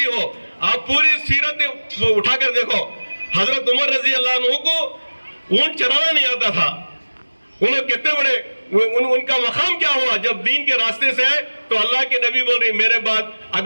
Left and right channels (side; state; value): both; inverted; correlation -1.00